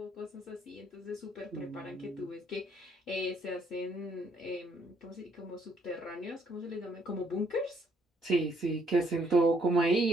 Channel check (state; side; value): normal; both; correlation 0.69